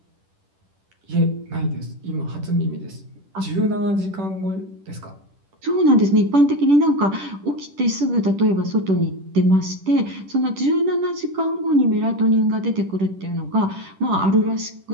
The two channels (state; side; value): late; left; 10 ms